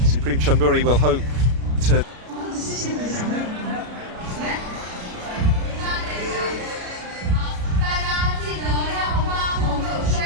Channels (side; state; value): left; late; 33 ms